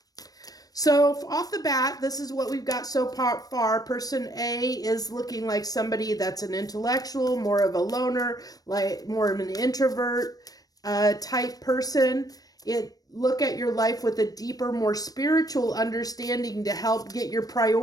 So off the bat, this is what we've got so far. Person A is looking like somebody that's an intellectual, more of a loner, like more of an introvert type person. Look at your life with a deeper, more spiritual understanding to help get your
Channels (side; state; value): right; late; 0.18 ms